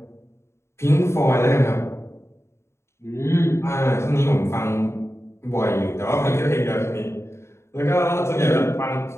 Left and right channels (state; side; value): late; right; 0.13 ms